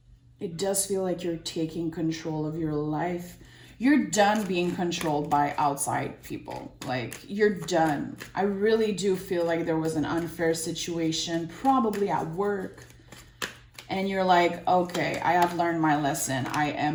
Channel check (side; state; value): both; identical; correlation 1.00